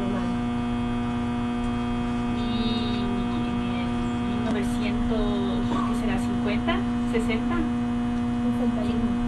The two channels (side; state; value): both; identical; correlation 1.00